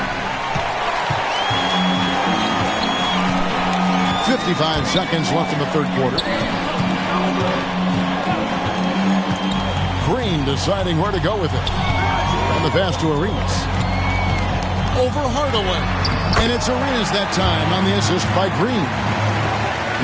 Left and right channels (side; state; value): both; identical; correlation 1.00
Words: 55 seconds left in the third quarter. Green deciding where to go with it. And the pass to Arenas. Over Hardaway. And it's Arenas that time on the assist by Green.